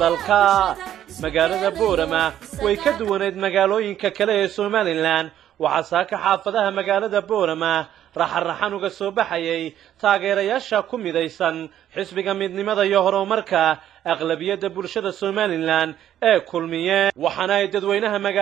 dalka magaalada Boorama way ka duwaneed magaalooyinka kale ee Somaliland waxa saaka xaafadaha magaalada Boorama raxan uga soo baxayay taageerayaasha ku midaysan xisbiga midnimada iyo horumarka aqlabiyada bulshada Somaliland ee kulmiye waxana ay dadweynaha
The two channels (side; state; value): left; quieter; 11.2 dB